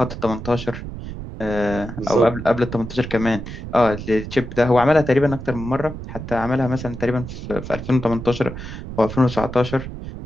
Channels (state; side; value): noise; right; rumble, 9 dB below the sound